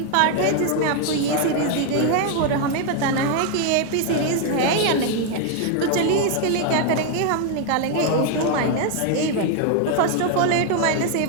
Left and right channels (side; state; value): both; different; correlation 0.01